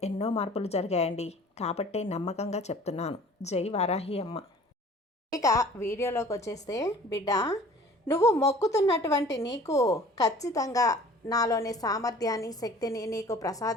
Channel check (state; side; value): normal; both; correlation 0.48